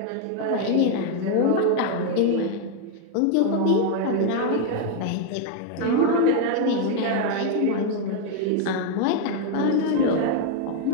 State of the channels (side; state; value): both; different; correlation 0.01